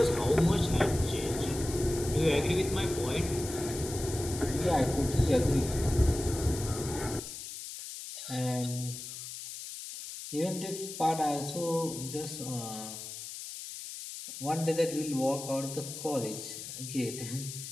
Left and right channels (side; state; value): left; noise; hiss, 9 dB below the sound